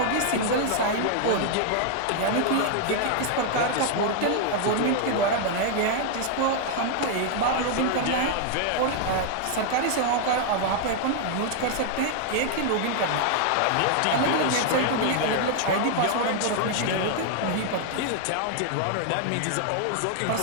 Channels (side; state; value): both; different; correlation 0.00